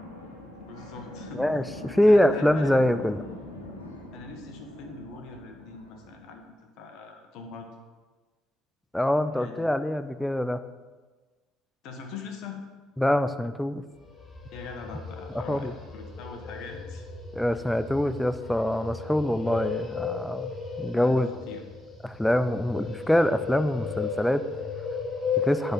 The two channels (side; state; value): both; normal; correlation 0.90